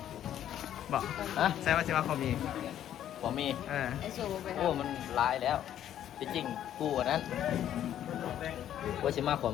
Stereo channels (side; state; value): right; quieter; 10.9 dB